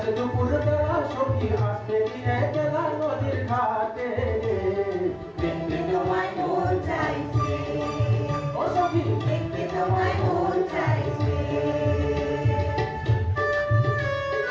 দুপুর বেলা সখী আসবে কি একলা নদীর ঘাটে দেখতে তোমায় মন চাইছে ও সখী দেখতে তোমায় মন চাইছে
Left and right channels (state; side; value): identical; both; correlation 1.00